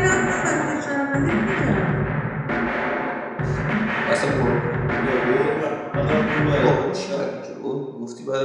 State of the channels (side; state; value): both; identical; correlation 1.00